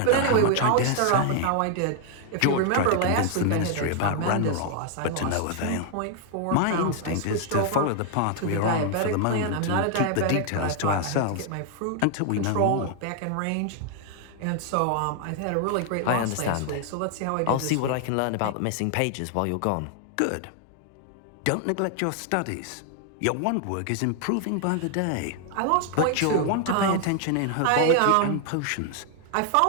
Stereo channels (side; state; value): both; different; correlation 0.00